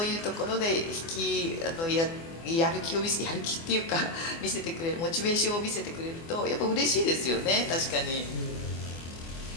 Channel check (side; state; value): right; late; 24 ms